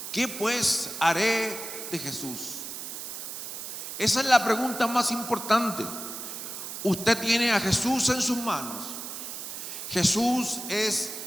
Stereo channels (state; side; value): noise; right; hiss, 8 dB below the sound